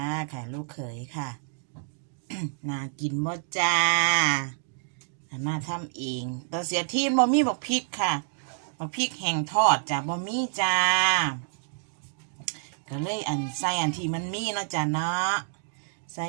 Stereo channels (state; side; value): silent; left; digital silence